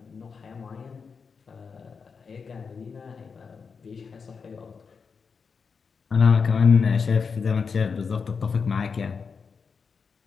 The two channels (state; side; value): quieter; right; 5.5 dB